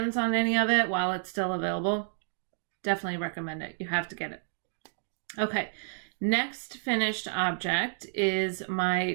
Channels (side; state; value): left; silent; digital silence